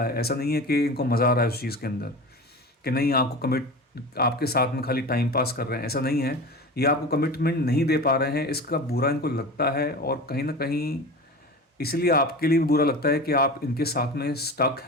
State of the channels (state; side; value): normal; both; correlation 0.31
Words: है। ऐसा नहीं है कि इनको मज़ा आ रहा है उस चीज़ के अंदर कि नहीं आपको कमिट, आपके साथ में खाली टाइम पास कर रहे हैं, ऐसा नहीं है। ये आपको कमिटमेंट नहीं दे पा रहे हैं, इसका बुरा इनको लगता है, और कहीं ना कहीं इसलिए आपके लिए भी बुरा लगता है कि आप इनके साथ में स्टक